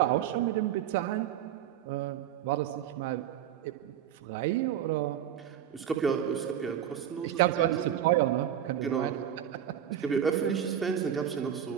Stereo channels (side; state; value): left; quieter; 10.1 dB